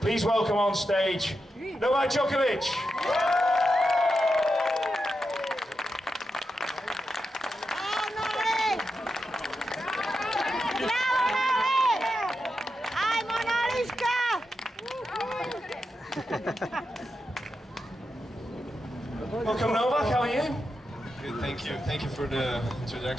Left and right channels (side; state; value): both; normal; correlation 0.88